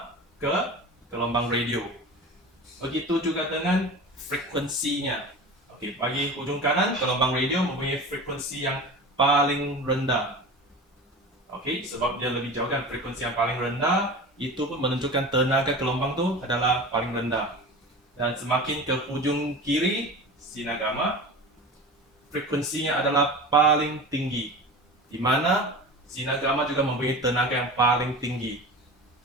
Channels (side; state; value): both; normal; correlation 0.33